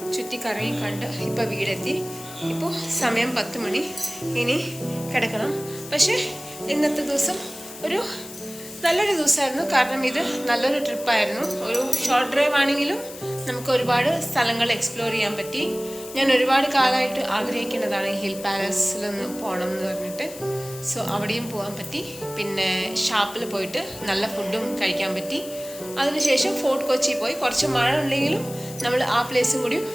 ചുറ്റിക്കറങ്ങി കണ്ട് ഇപ്പോൾ വീടെത്തി. ഇപ്പോൾ സമയം 10 മണി. ഇനി കിടക്കണം. പക്ഷേ ഇന്നത്തെ ദിവസം ഒരു നല്ലൊരു ദിവസമായിരുന്നു. കാരണം ഇത് നല്ലൊരു ട്രിപ്പായിരുന്നു. ഒരു ഷോർട്ട് ഡ്രൈവ് ആണെങ്കിലും നമുക്ക് ഒരുപാട് സ്ഥലങ്ങൾ എക്സ്പ്ലോർ ചെയ്യാൻ പറ്റി. ഞാൻ ഒരുപാട് കാലമായിട്ട് ആഗ്രഹിക്കുന്നതാണ് ഹിൽ പാലസിലൊന്ന് പോകണം എന്ന് പറഞ്ഞിട്ട്. സോ അവിടെയും പോകാൻ പറ്റി. പിന്നെ ഷാപ്പിൽ പോയിട്ട് നല്ല ഫുഡും കഴിക്കാൻ പറ്റി. അതിനുശേഷം ഫോർട്ട് കൊച്ചി പോയി. കുറച്ച് മഴ ഉണ്ടെങ്കിലും നമ്മൾ ആ പ്ലേസും കൂടി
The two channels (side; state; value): left; noise; hiss, 14 dB below the sound